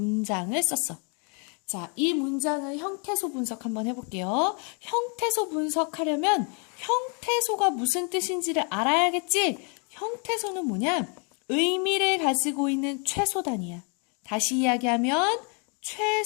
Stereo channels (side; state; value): right; quieter; 36.2 dB